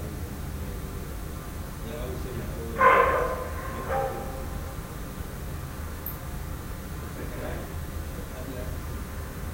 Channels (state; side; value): identical; both; correlation 1.00